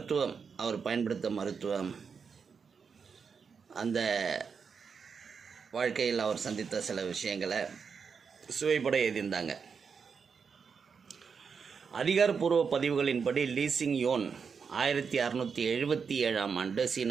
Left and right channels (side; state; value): left; quieter; 5.9 dB